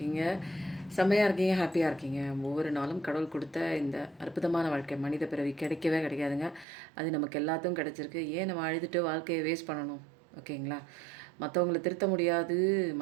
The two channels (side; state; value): left; drops out; at 6.7 s